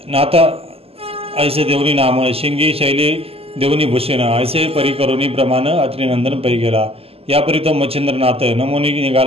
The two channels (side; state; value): left; late; 0.28 ms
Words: नाथा ऐसे देवनी नाम शिंगी शैली देवनी भूषण ऐसे परिकरुणी प्रमाण अत्रिनंदन पै गेला यापरी तो मच्छिंद्रनाथ नमोनी